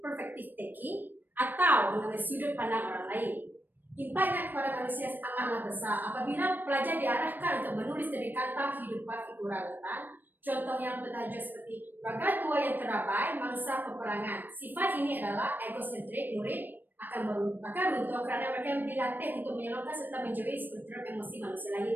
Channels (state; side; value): late; left; 0.091 ms